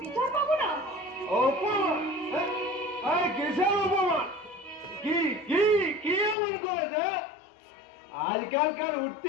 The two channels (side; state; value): right; drops out; at 6.4 s